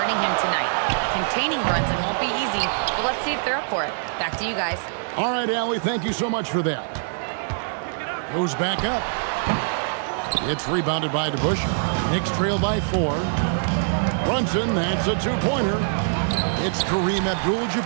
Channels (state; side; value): silent; left; digital silence